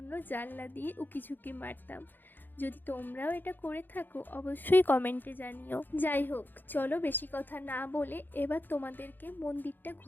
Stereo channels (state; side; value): late; right; 0.091 ms